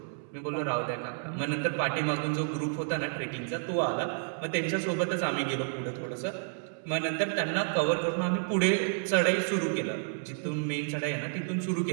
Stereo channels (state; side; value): silent; left; 57 dB below the other